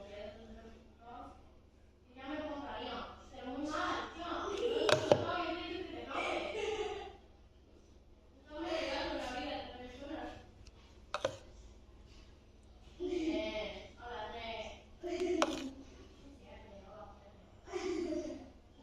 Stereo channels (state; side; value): identical; both; correlation 1.00